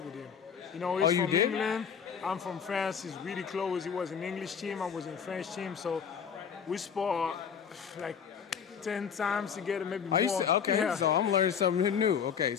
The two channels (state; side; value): quieter; right; 7.2 dB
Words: with him. He's from England. I'm from France. He's really close. He was an English team. I was in French team. So we spar like 10 times together, maybe more. Okay, yeah. so I'm learning something new. Okay,